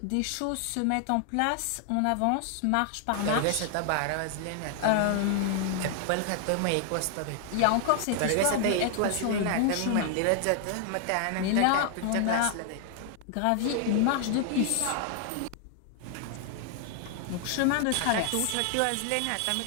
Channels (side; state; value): both; different; correlation 0.00